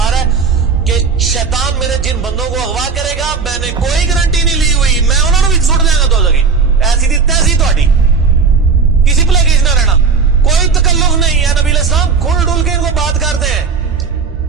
رہا ہے کہ شیطان میرے جن بندوں کو اغوا کرے گا میں نے کوئی گارنٹی نہیں لی ہوئی, میں انہوں نے بھی سٹ دیا گا. تو لگی ایسی دی تیسی تہاڈی, کسی پلے کیس نہ رہنا, کوئی تکلف نہیں ہے. نبی علیہ السلام کھل ڈل کے ان کو بات کرتے ہیں.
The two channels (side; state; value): left; quieter; 5.3 dB